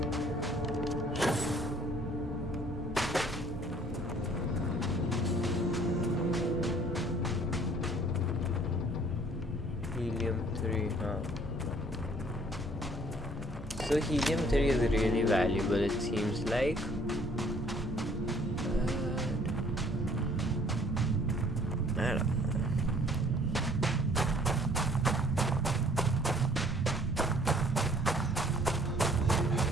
Helium-3, huh? So helium-3 is really valuable, it seems like. I don't know.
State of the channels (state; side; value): normal; both; correlation 0.57